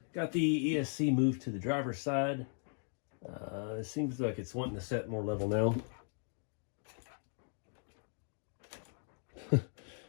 got the ESC moved to the driver's side. It seems like it's wanting to set more level now.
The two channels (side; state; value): right; silent; 53 dB below the other